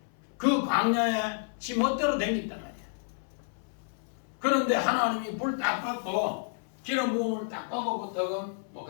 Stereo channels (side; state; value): right; silent; 58 dB below the other